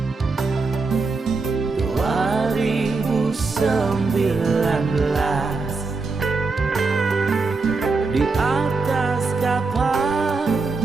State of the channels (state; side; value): quieter; left; 4.1 dB